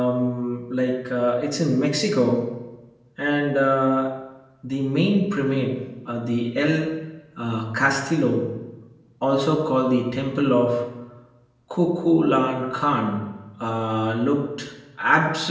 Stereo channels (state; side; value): identical; both; correlation 1.00